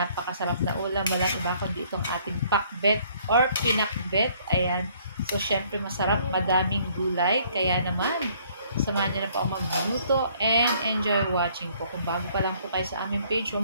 na ulam. Walang iba kundi itong ating pakbet or pinakbet. Ayan. So, syempre masarap, madaming gulay. Kaya naman, samahan niyo na po ako magluto and enjoy watching po. Kung bago pa lang po kayo sa aming page,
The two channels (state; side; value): inverted; both; correlation -0.61